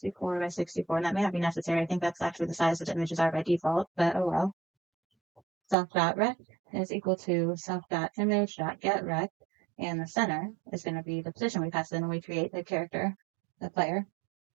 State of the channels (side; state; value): left; drops out; at 5.8 s